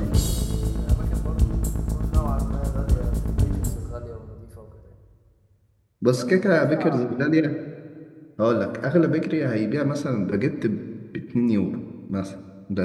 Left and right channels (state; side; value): identical; both; correlation 1.00